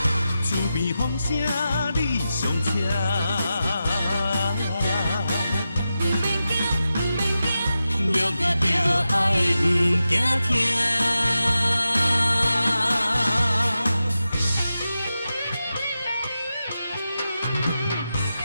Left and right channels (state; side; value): inverted; both; correlation -0.91